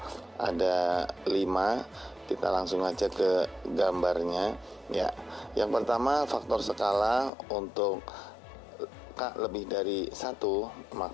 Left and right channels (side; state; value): right; drops out; at 7.3 s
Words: ada 5. Kita langsung aja ke gambarnya ya. Yang pertama, faktor skala untuk K lebih dari 1,